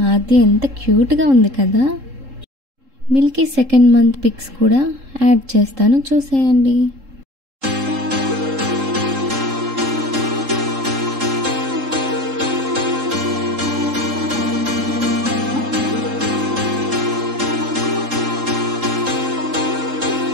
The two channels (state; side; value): late; left; 3.7 ms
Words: అది ఎంత క్యూట్గా ఉంది కదా. మిల్కీ 2nd మంత్ పిక్స్ కూడా యాడ్ చేస్తాను, చూసేయండి.